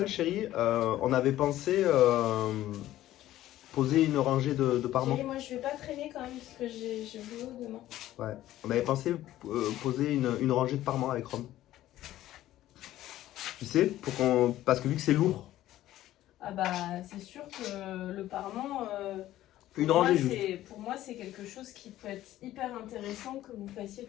chérie, on avait pensé poser une rangée de parements. Chérie, moi, je vais pas traîner quand même, parce que j'ai boulot demain. Ouais. On avait pensé poser une rangée de parements avec Rome. Tu sais, parce que vu que c'est lourd, Ah bah, c'est sûr que le parement, une rangée juste. pour moi, c'est quelque chose qui peut être hyper intéressant que vous fassiez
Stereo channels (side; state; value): right; quieter; 14.2 dB